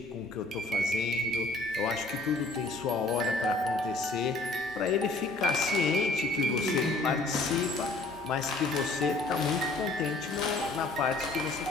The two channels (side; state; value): right; quieter; 3.1 dB